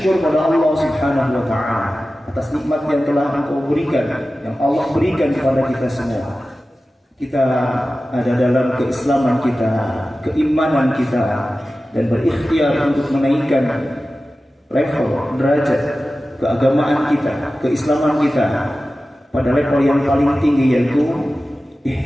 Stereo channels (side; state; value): both; normal; correlation 0.95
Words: pada Allah Subhanahu wa Ta'ala atas nikmat yang telah Engkau berikan, yang Allah berikan kepada kita semua. Kita ada dalam keislaman kita, keimanan kita, dan berikhtiar untuk menaikkan level, derajat keagamaan kita, keislaman kita pada level yang paling tinggi, yaitu